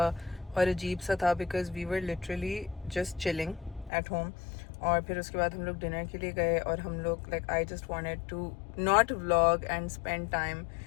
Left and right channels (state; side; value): drops out; right; at 3.9 s